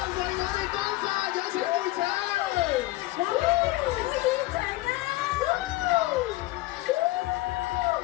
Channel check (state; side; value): quieter; right; 18.9 dB